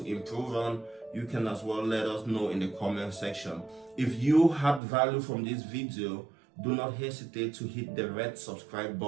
improve on, you can as well let us know in the comment section. If you had value from this video, do not hesitate to hit the red subscribe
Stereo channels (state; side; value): drops out; left; at 4.8 s